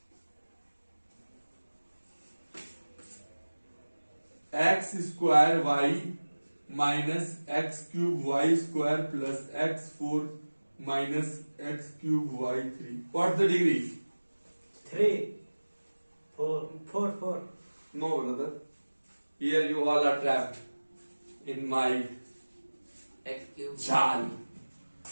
X square y minus x cube y square plus x4 minus x cube y3. What's the degree? 3. 4. No, brother. Here you all are trapped in my X cube. jal.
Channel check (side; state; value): both; inverted; correlation -1.00